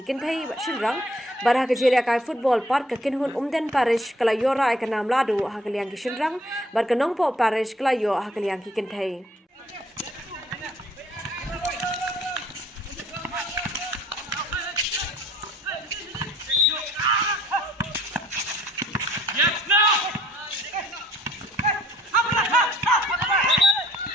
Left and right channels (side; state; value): both; normal; correlation 0.59